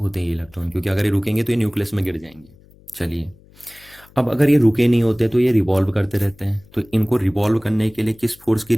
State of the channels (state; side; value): noise; left; hum, 27 dB below the sound